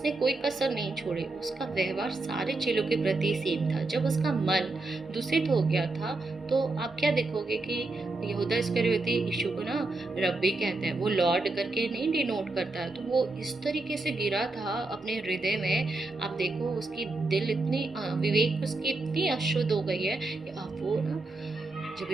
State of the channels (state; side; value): quieter; left; 3.2 dB